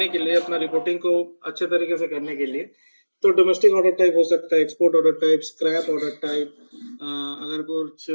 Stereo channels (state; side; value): inverted; both; correlation -1.00